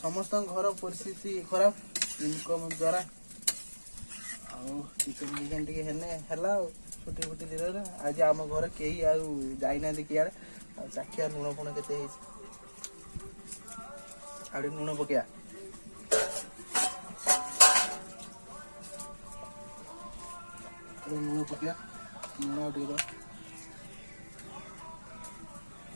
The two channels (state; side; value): inverted; both; correlation -1.00